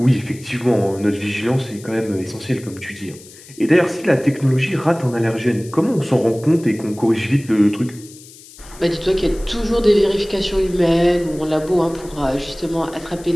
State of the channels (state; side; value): noise; left; hiss, 20 dB below the sound